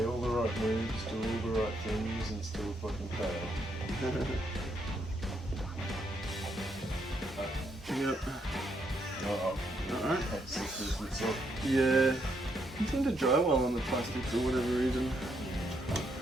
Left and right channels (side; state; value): both; normal; correlation 0.76